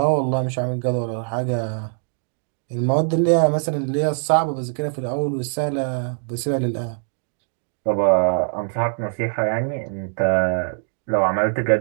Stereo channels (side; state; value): left; silent; 64 dB below the other